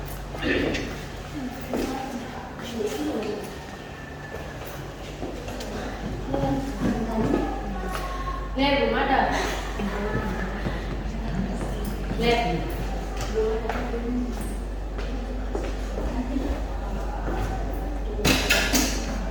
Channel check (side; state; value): both; identical; correlation 1.00